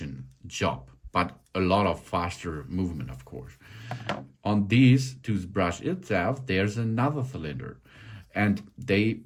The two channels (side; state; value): both; identical; correlation 1.00